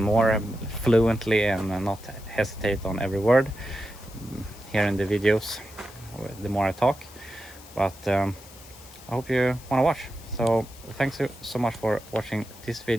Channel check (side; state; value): left; noise; hiss, 20 dB below the sound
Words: fluently and not hesitate on every word here in the videos the more I talk. But I hope you want to watch. So thanks so much for watching this